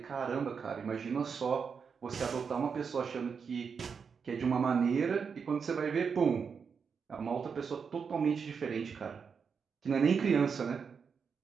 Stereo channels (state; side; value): quieter; left; 6.0 dB